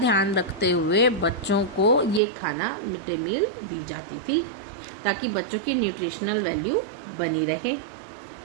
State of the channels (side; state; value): left; drops out; at 2.2 s